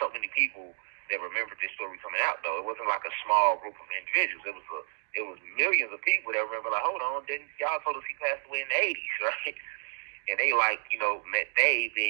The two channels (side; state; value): left; silent; digital silence